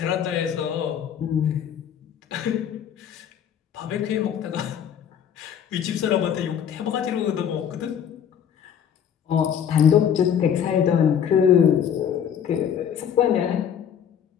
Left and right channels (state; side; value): quieter; right; 8.6 dB